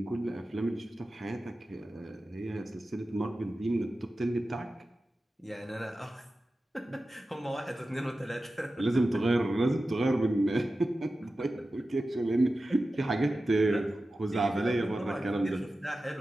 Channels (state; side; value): normal; both; correlation 0.94